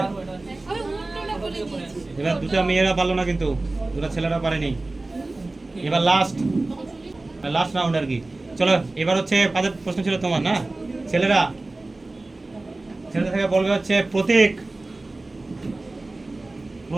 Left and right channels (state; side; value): quieter; left; 3.0 dB